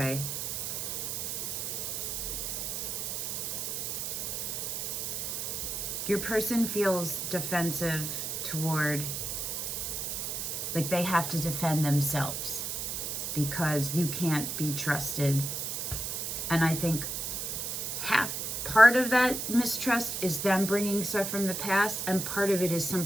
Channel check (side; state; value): right; noise; hiss, 3 dB below the sound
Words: Your person feels defensive toward, like they have to defend themselves because you can't be trusted. And I think part of that mistrust is them bringing stuff from the past, and part of it is